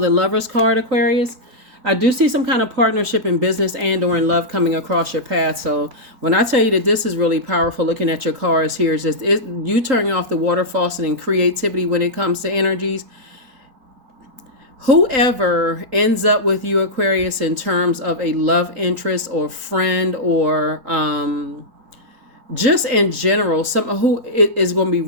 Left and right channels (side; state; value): left; late; 3.8 ms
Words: the Lover's card, Aquarius. I do see some kind of partnership in business and or in love coming across your path. So when I tell you that this is really powerful, looking at your cards here, is just you turning off the water faucet and creativity when it comes to energies. Whoever ends up with you, Aquarius, in terms of a love interest or friend or just in general, someone who is going to be